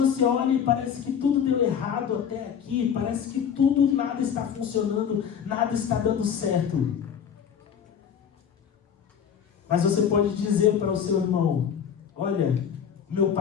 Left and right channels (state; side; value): quieter; right; 7.9 dB